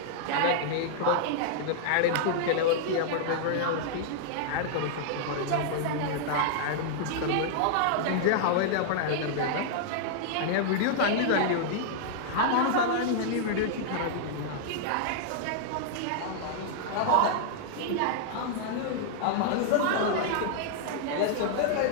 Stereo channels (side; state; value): both; different; correlation -0.01